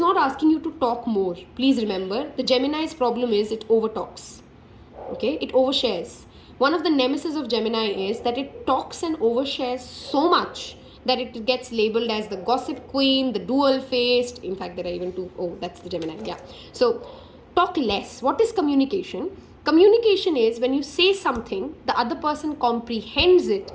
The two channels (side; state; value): both; identical; correlation 1.00